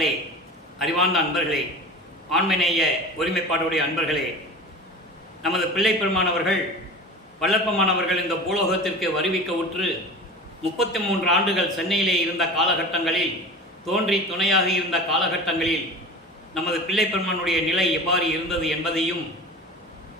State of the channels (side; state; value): both; normal; correlation 0.35